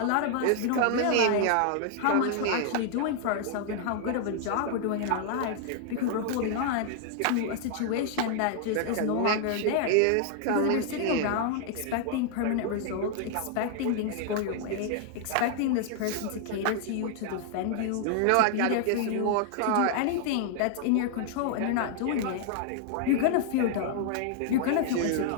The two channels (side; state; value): both; different; correlation 0.00